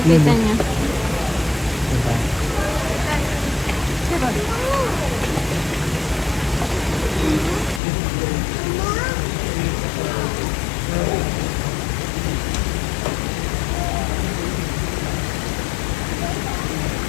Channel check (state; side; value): drops out; right; at 7.8 s